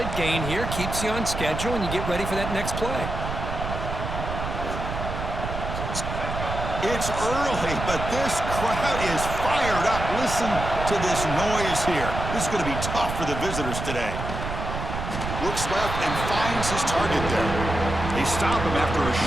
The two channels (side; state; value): right; noise; rumble, 5 dB below the sound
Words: gain here. Keeps you on schedule, and you get ready for that next play. It's early, but this crowd is fired up. Listen to this noise here. This is going to be tough for the visitors today. Looks left and finds his target there. They stop him after a